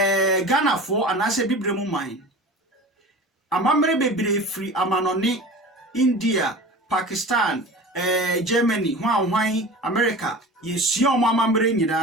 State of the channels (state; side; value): normal; both; correlation 0.36